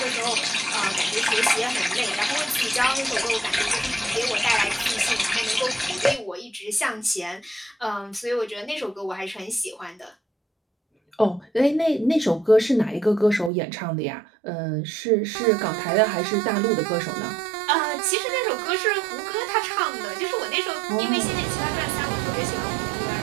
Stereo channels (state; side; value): drops out; left; at 13.5 s